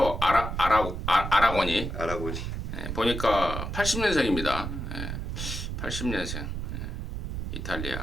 아라고니 보니까 80년생입니다. 80년생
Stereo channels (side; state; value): right; noise; rumble, 4 dB below the sound